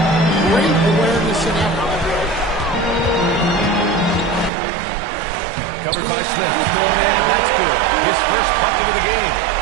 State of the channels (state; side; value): drops out; left; at 4.5 s